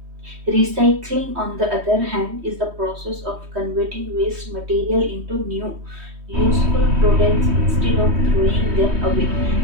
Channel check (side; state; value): left; late; 3.1 ms